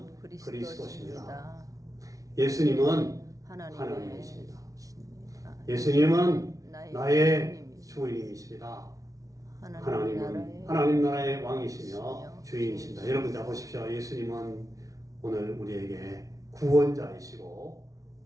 그리스도십니다. 예수님은 하나님이십니다. 예수님은 나의 주인이십니다. 하나님은 하나님 나라의 왕이시며 주인이십니다. 여러분 자 보십시오. 예수님은 오늘 우리에게 구원자이시고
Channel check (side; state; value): left; late; 0.17 ms